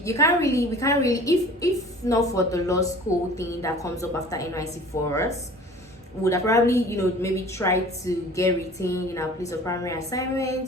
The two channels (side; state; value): both; normal; correlation 0.45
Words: really if not for the law school thing that comes up after NYC for us, would have probably maybe try to get retained in our place of primary